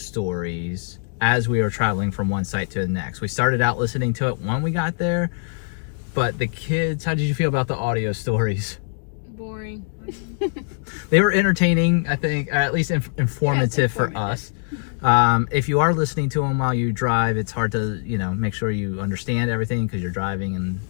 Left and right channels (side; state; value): right; silent; digital silence